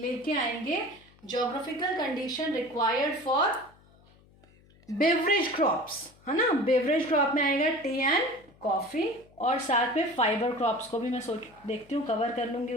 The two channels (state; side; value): noise; left; hum, 28 dB below the sound